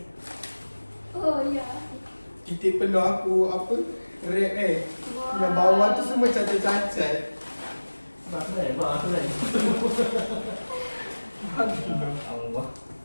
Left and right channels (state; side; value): inverted; both; correlation -1.00